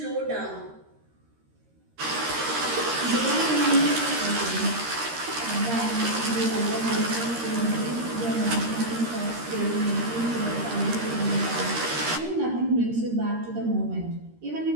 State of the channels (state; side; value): late; left; 13 ms